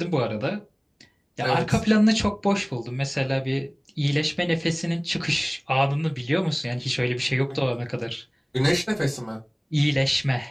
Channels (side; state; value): both; identical; correlation 1.00